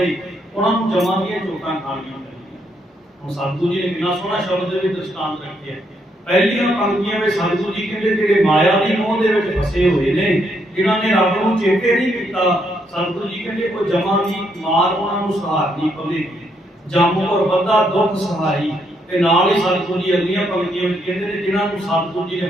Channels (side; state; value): both; normal; correlation 0.75